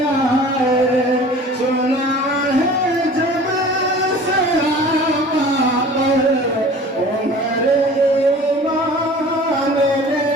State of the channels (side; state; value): both; normal; correlation 0.44